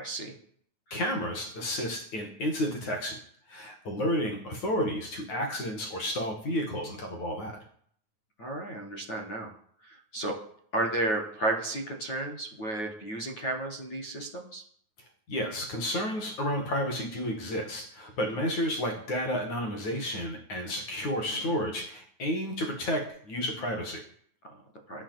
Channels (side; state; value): right; late; 9.3 ms